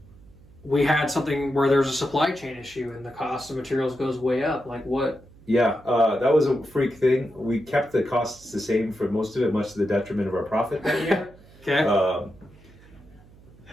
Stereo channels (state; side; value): noise; right; hum, 24 dB below the sound